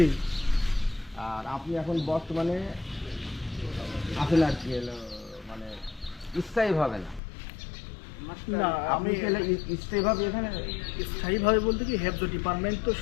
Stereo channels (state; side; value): drops out; right; at 7.2 s